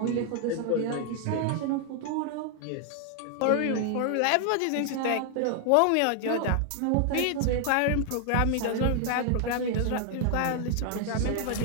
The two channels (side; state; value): both; different; correlation 0.00